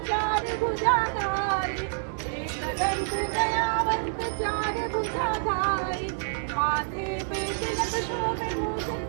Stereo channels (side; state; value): left; silent; 60 dB below the other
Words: चार भुजाधारी दंत दयावंत चार भुजाधारी माथे पे तिलक शोभे मूष